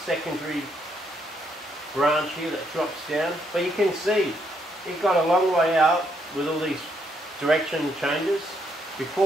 secondary branch here that drops down. But you can see, it got a long way out with all these direction changes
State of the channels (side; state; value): both; normal; correlation 0.74